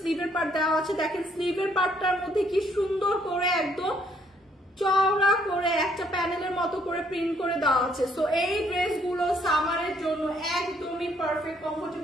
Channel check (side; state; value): both; normal; correlation 0.68